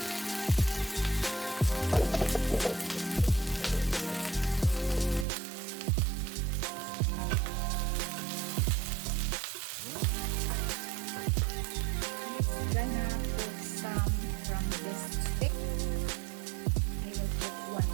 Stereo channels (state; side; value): drops out; left; at 5.2 s